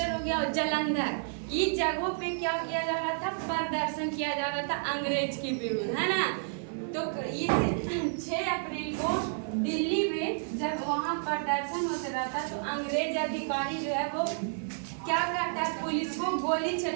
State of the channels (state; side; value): silent; left; digital silence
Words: हो गया और जालंधर, इस जगहों पे क्या किया जा रहा था, प्रदर्शन किया जा रहा था अंग्रेज के विरुद्ध, है ना। तो इस 6 अप्रैल को दिल्ली में जब वहाँ प्रदर्शन होता रहता तो अंग्रेज अधिकारी जो है वो क्या करता है, पुलिस को गोली